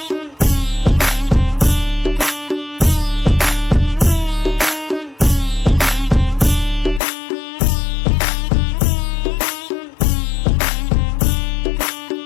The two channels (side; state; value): right; drops out; at 7.0 s